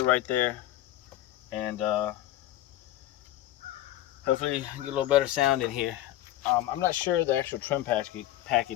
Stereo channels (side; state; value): right; quieter; 14.0 dB